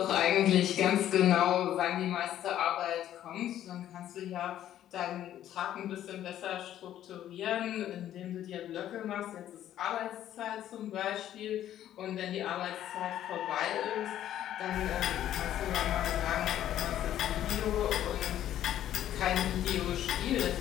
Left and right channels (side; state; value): right; quieter; 11.8 dB